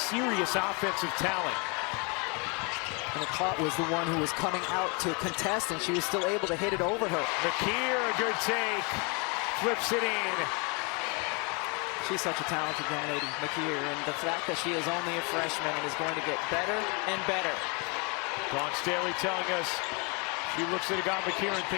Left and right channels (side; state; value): right; quieter; 32.2 dB